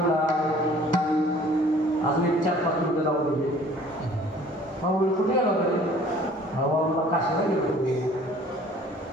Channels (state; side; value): normal; both; correlation 0.52